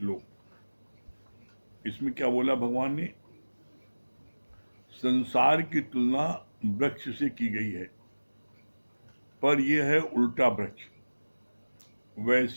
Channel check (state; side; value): inverted; both; correlation -1.00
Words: इसमें क्या बोला भगवान ने? संसार की तुलना वृक्ष से की गई है, पर यह है उल्टा वृक्ष।